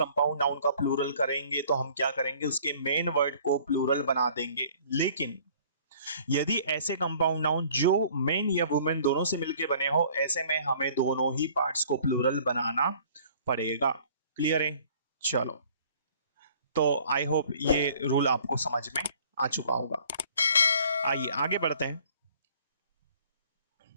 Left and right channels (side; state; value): both; inverted; correlation -0.54